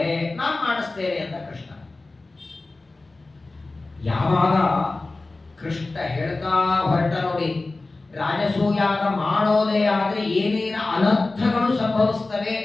ನಾನು ಮಾಡಿಸ್ತೇನೆ ಅಂತ ಕೃಷ್ಣ. ಯಾವಾಗ ಕೃಷ್ಣ ಹೇಳ್ತಾ ಹೊರಟ ನೋಡಿ, ರಾಜಸೂಯಾಗ ಮಾಡೋದೇ ಆದ್ರೆ ಏನೇನು ಅನರ್ಥಗಳು ಸಂಭವಿಸ್ತವೆ,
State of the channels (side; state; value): right; quieter; 3.3 dB